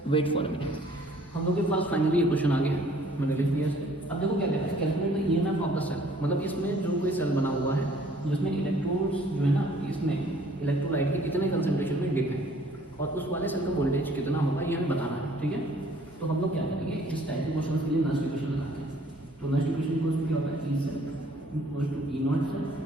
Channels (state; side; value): normal; both; correlation 0.58